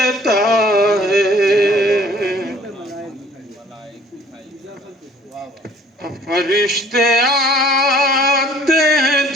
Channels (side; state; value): both; normal; correlation 0.55